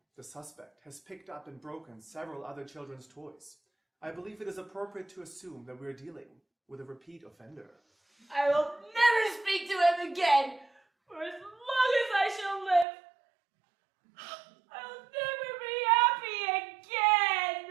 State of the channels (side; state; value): left; drops out; at 12.9 s